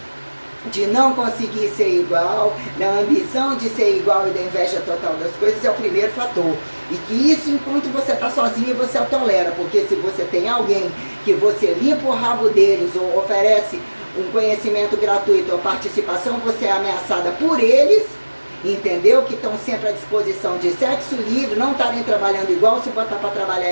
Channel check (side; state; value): both; inverted; correlation -1.00